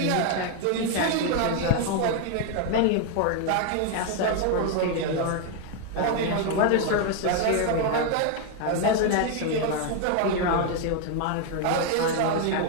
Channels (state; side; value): different; both; correlation 0.00